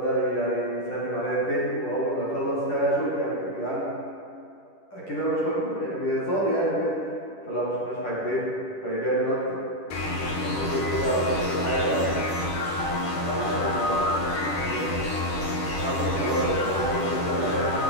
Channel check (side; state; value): right; late; 10 ms